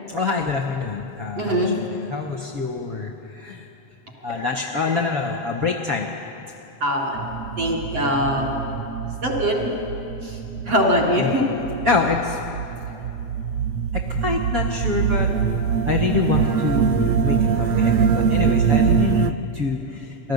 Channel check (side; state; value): left; late; 7.2 ms